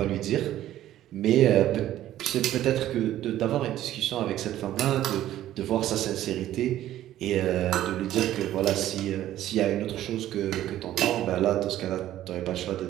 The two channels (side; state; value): left; quieter; 13.2 dB